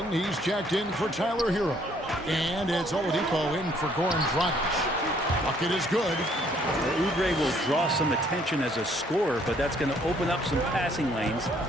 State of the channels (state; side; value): normal; both; correlation 0.64